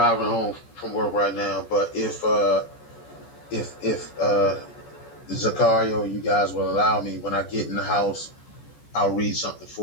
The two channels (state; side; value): late; right; 14 ms